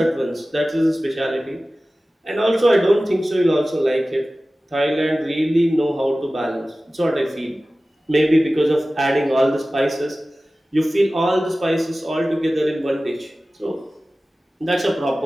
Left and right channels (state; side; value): normal; both; correlation 0.96